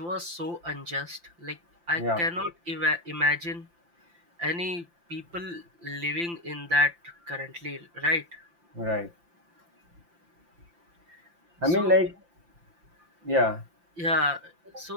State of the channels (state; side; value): late; left; 5.8 ms